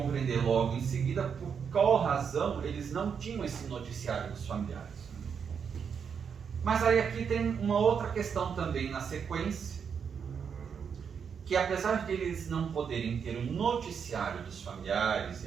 logo em seguida por qual razão eles não tinham esse noticiário dos familiares. Mas aí aqui tem uma outra questão também na sequência, que apesar de eles não poderem ter o noticiário dos familiares e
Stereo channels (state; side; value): quieter; left; 6.8 dB